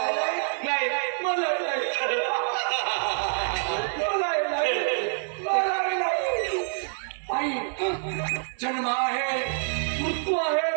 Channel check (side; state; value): left; silent; 60 dB below the other